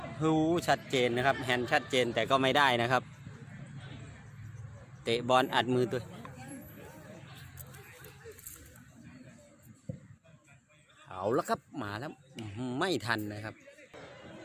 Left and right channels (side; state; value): both; identical; correlation 1.00